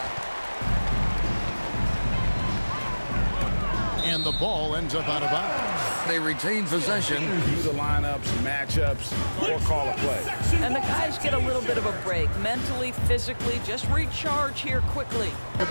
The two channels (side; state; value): both; inverted; correlation -1.00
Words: And the ball ends up out of bounds. They retain possession. View the lineups, matchups, or call a play. And the guys get a little bit of a break, mentally, physically, just recharge here quickly. The